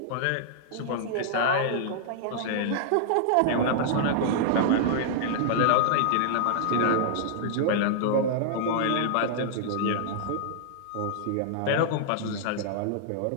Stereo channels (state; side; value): different; both; correlation -0.01